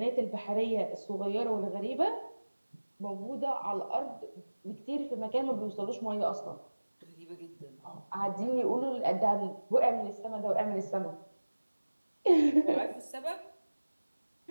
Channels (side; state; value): both; inverted; correlation -1.00